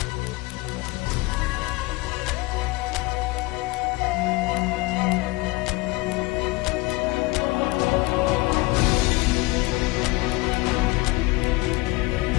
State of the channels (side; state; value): right; quieter; 22.5 dB